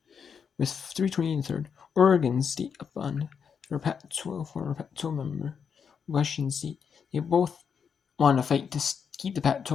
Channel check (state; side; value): quieter; right; 6.7 dB